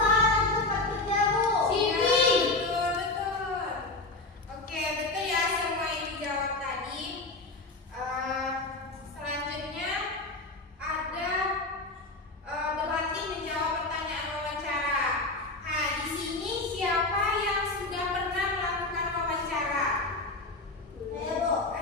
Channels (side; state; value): right; quieter; 3.1 dB